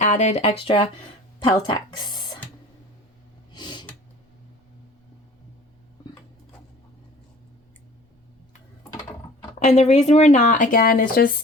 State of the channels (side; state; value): both; normal; correlation 0.47